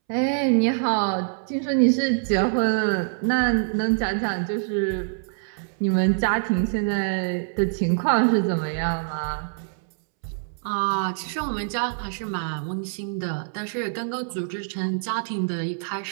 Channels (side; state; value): left; silent; 62 dB below the other